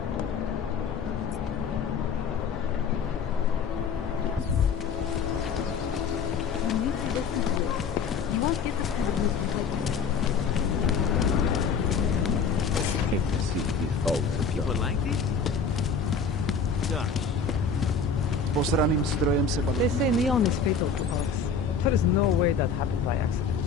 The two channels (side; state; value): right; quieter; 5.4 dB